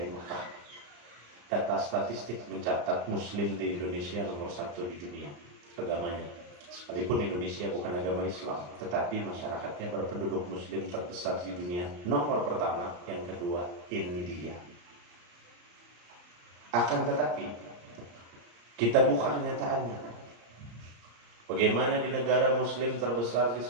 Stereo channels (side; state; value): left; late; 34 ms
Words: Mekah. Data statistik mencatat muslim di Indonesia nomor 1 di dunia agamanya. Sekalipun Indonesia bukan agama Islam, tetapi masyarakatnya berpenduduk muslim terbesar di dunia. Nomor pertama, yang kedua India. Akan tetapi kita buka kenyataannya. Bagaimana di negara muslim terbesar di